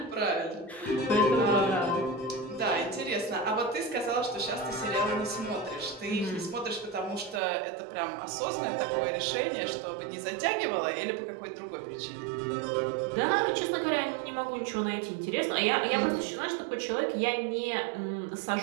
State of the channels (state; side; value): drops out; left; at 7.4 s